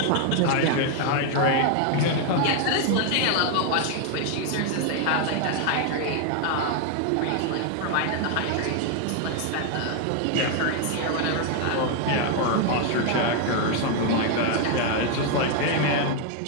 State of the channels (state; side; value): different; both; correlation 0.01